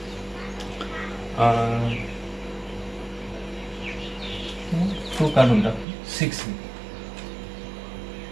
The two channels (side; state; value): left; drops out; at 5.9 s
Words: टू काढून टाक 6